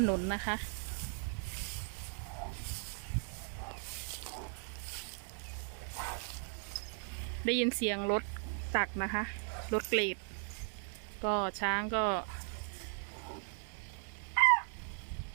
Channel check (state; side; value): silent; left; 53 dB below the other